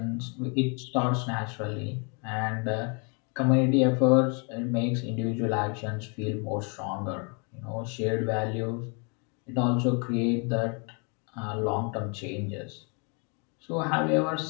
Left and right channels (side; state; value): right; quieter; 35.4 dB